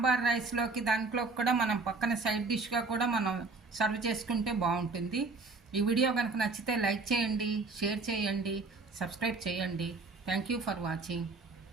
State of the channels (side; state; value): left; quieter; 3.8 dB